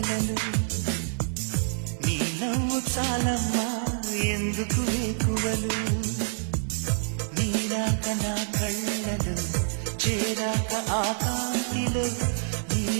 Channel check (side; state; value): left; silent; digital silence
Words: నీ నవ్వు చాలమ్మా ఎందుకు వేకువలు, నీరాక నా కళ్ళలు చేరాక ఆకాంతిలో,